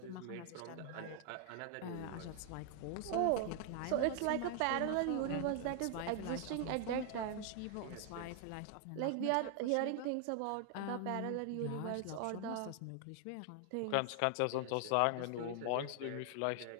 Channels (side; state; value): both; different; correlation 0.00